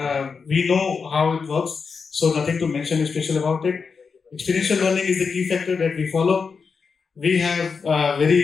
We know how it works, so nothing to mention special about it. Experiential learning is the key factor that we follow. We have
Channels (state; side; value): quieter; right; 5.3 dB